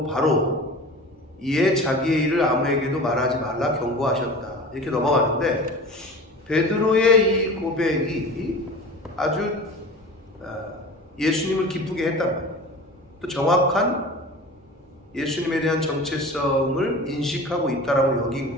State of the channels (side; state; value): both; normal; correlation 0.37